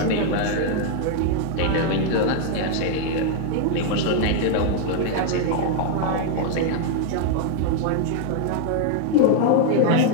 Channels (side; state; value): both; different; correlation 0.00